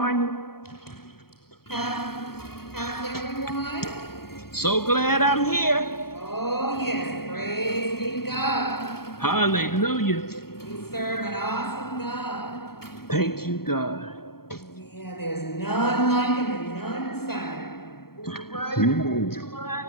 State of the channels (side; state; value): right; late; 0.95 ms